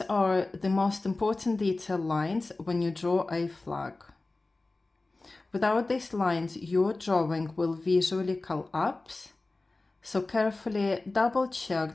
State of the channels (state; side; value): quieter; right; 3.2 dB